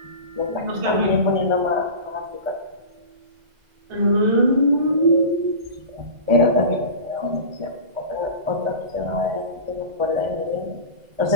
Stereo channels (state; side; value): late; left; 2.0 ms